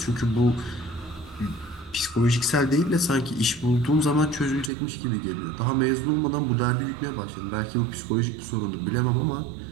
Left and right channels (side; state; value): left; drops out; at 4.7 s